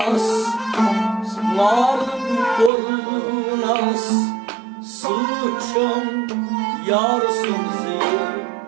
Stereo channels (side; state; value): left; drops out; at 2.7 s